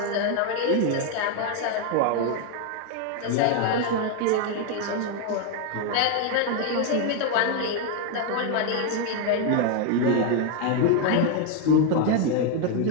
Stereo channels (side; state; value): both; different; correlation 0.01